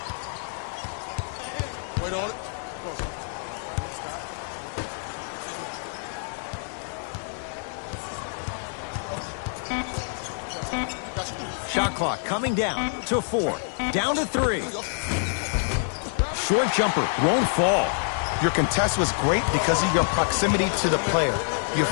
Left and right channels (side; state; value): right; silent; digital silence